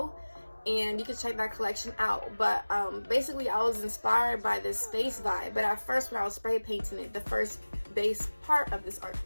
and you can check that collection out. But basically I was inspired by this space vibe, but at first when I was spray painting it, the first base part of this art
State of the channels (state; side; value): inverted; both; correlation -1.00